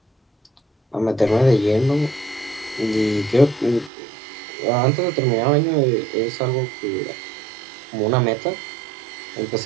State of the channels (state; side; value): drops out; left; at 3.9 s